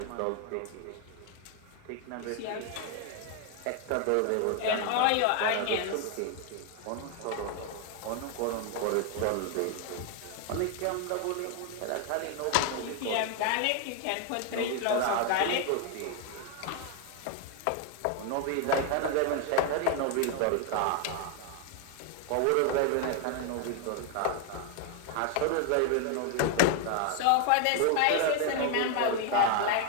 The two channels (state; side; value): different; both; correlation 0.01